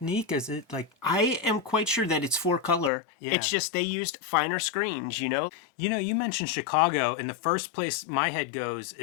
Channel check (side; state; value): right; drops out; at 2.9 s